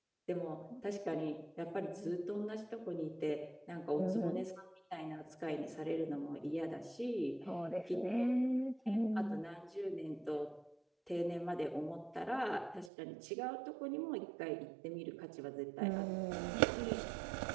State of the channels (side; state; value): left; drops out; at 12.9 s